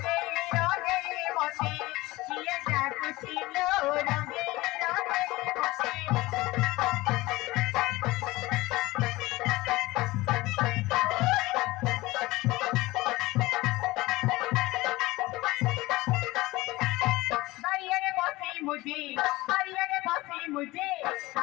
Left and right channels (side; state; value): right; quieter; 19.8 dB